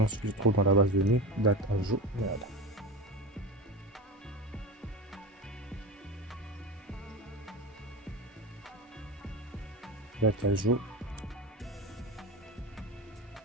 ce qui se trouve dans la base de données. Date ajout. Voilà. Date ajout.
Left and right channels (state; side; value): normal; both; correlation 0.25